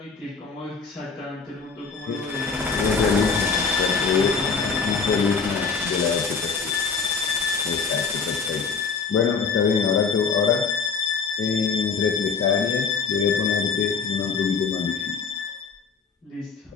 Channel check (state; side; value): quieter; right; 5.4 dB